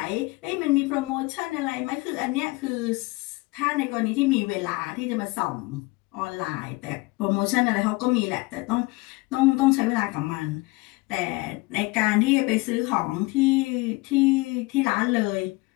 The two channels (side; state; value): right; quieter; 24.0 dB